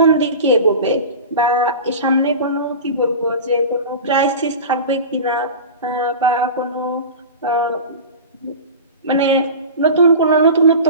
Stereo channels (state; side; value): inverted; both; correlation -0.32